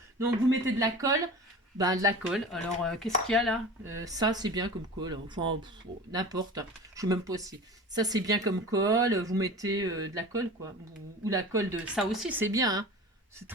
Donc, vous mettez de la colle. Ben, de la colle. Alors, qu'est-ce qu'il y a là? Ça, c'est bien comme colle. Enfin, n'importe. Je sais même pas si. Ça, c'est bien comme colle. Vous mettez de la colle, quoi. Ou la colle de... Ça aussi, c'est bien, hein. C'est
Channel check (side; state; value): both; normal; correlation 0.36